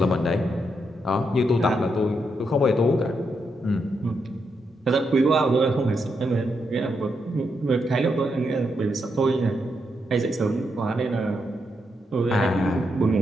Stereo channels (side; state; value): both; normal; correlation 0.81